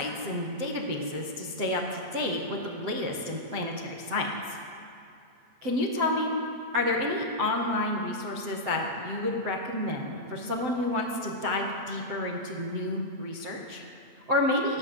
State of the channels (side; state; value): left; late; 7.9 ms